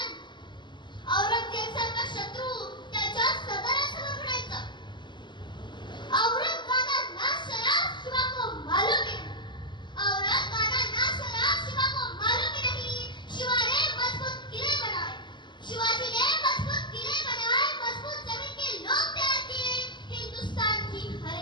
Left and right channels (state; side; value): late; right; 0.22 ms